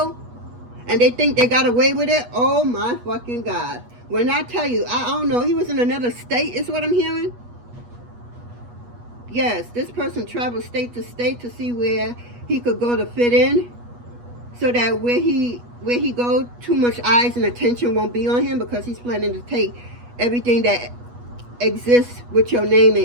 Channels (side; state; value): left; late; 8.3 ms